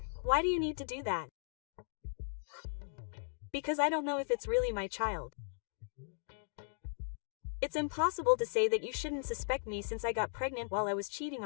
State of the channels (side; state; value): right; silent; digital silence